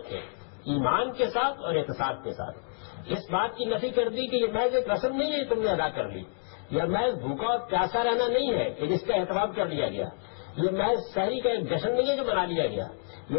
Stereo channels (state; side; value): silent; right; digital silence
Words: ایمان کے ساتھ اور احتساب کے ساتھ. اس بات کی نفی کر دی کہ یہ محض ایک رسم نہیں ہے تم نے ادا کر لی، یا محض بھوکا اور پیاسا رہنا نہیں ہے کہ جس کا اہتمام کر لیا گیا. یہ محض شہری کا ایک جشن نہیں ہے جو منا لیا گیا،